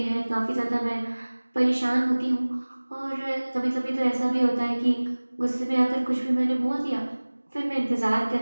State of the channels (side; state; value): both; inverted; correlation -1.00